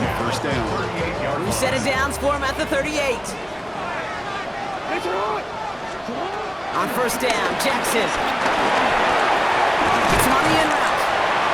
1st down. New set of downs for him at the 38. On 1st down, Jackson. Gets him on the in route.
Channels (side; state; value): both; identical; correlation 1.00